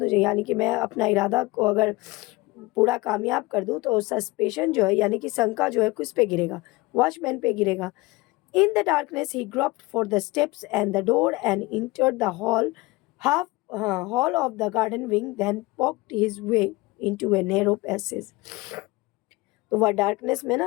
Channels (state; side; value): quieter; right; 22.3 dB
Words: यानी कि मैं अपना इरादा को अगर पूरा कामयाब कर दूँ, तो सस्पेशन जो है यानी कि शंका जो है किस पे गिरेगा, वॉचमैन पे गिरेगा। In the darkness he groped for the steps and the door and entered the hall of the garden wing, then poked his way into a narrow passage. तो वह डार्कनेस में